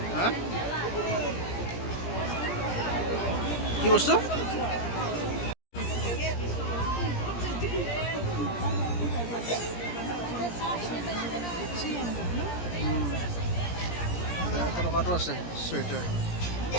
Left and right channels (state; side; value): late; right; 17 ms